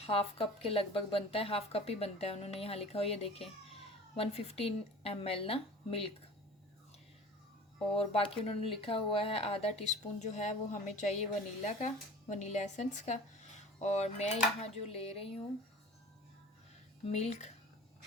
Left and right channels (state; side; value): normal; both; correlation 0.41